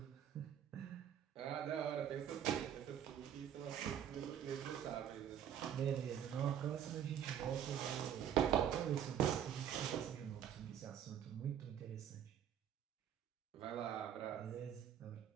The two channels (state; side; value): quieter; left; 9.5 dB